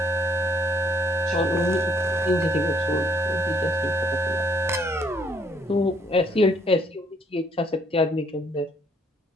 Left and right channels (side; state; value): both; normal; correlation 0.65